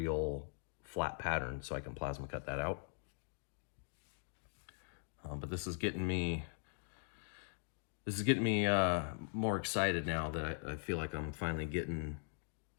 flat pattern so I can plasma cut that out. But this is getting me more excited now that I feel like I'm finally getting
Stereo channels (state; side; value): silent; right; digital silence